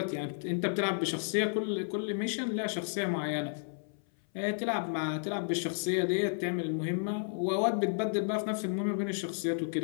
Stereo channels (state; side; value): silent; right; 56 dB below the other